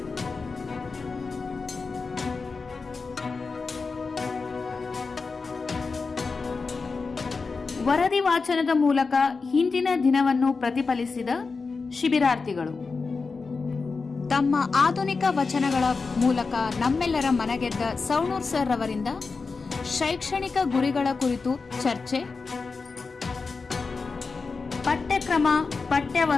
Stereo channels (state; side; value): quieter; right; 4.5 dB